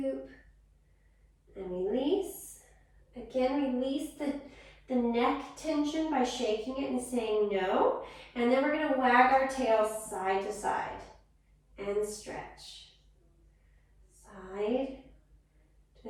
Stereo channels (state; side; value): identical; both; correlation 1.00